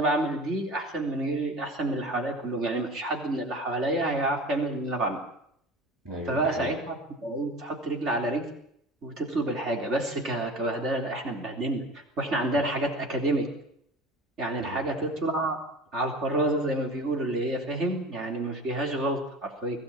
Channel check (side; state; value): both; normal; correlation 0.37